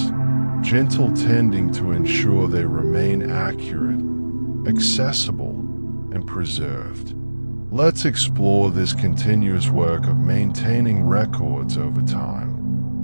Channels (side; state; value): both; inverted; correlation -1.00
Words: gentle tending to ensure they remain accurate, accessible, and preserved. Let's explore this continuous work of maintaining records over